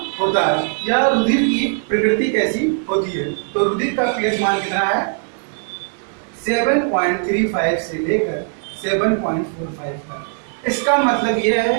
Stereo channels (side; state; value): left; silent; 66 dB below the other